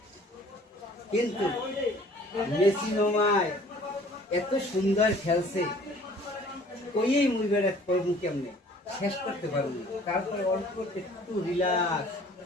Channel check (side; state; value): both; normal; correlation 0.52